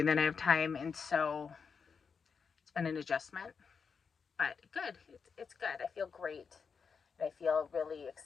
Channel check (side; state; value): right; quieter; 5.8 dB